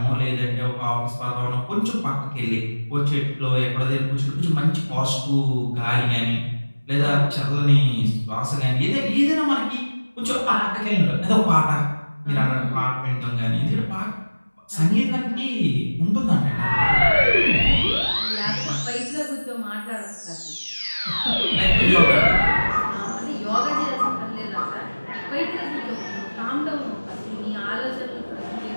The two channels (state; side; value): inverted; both; correlation -1.00